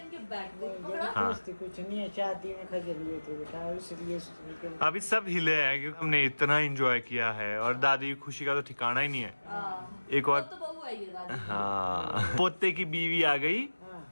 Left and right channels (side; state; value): both; inverted; correlation -1.00